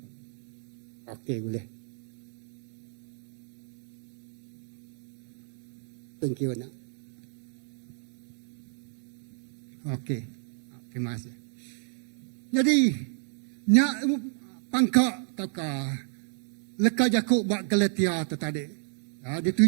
okey, boleh. Thank you, nak. Okey. Terima kasih. Jadi, nyak pangkak taka leka Jakub bak Galatia tu tadi.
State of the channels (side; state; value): left; silent; 57 dB below the other